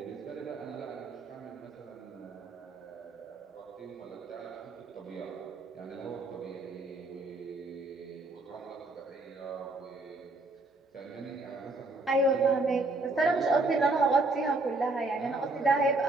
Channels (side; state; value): left; quieter; 3.1 dB